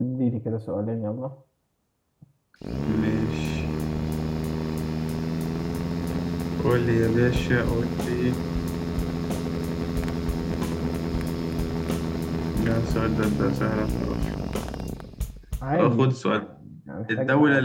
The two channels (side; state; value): both; identical; correlation 1.00